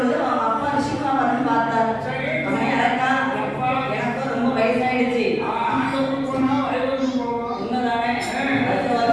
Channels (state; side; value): identical; both; correlation 1.00